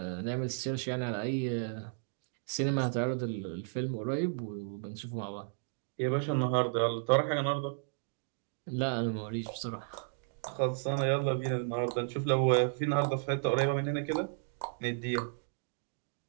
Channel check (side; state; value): left; silent; digital silence